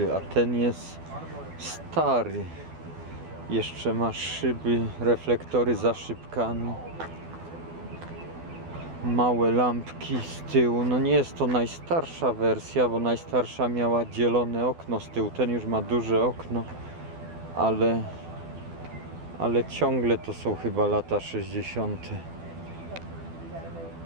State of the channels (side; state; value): left; late; 12 ms